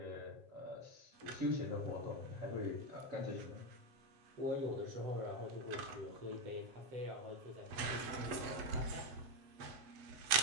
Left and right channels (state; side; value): late; left; 8.1 ms